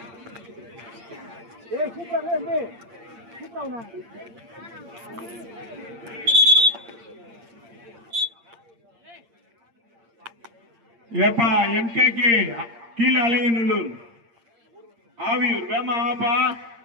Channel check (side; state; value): left; late; 8.7 ms